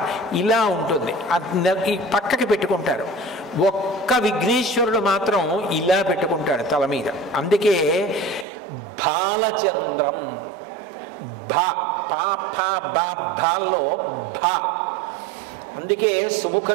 ఇలా ఉంటుంది, ఈ పక్కకి పెట్టుకుంటారు. ఒక్క విఘ్నేశ్వరుడు మాత్రం ఇలా పెట్టుకుంటాడు తల మీద. అందుకే బాలచంద్రం, భాల్లో భా. అందుకే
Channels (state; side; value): drops out; left; at 8.5 s